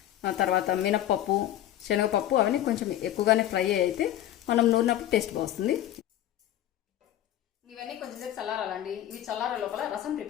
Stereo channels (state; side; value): quieter; right; 12.5 dB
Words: తర్వాత మినప్పప్పు శనగపప్పు అవన్నీ కొంచెం ఎక్కువగానే ఫ్రై అయితే మనం నూరినప్పుడు టేస్ట్ బాగుంటుంది. ఇవన్నీ కొంచెం సేపు చల్లారాలండి. ఇవి చల్లార లోపల రసం